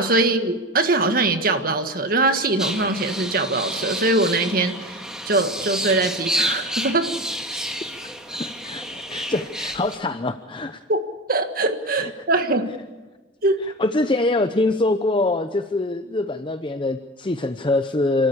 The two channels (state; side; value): normal; both; correlation 0.27